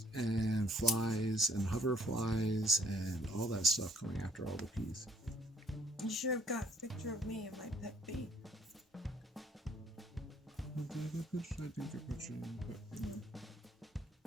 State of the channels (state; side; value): normal; both; correlation 0.62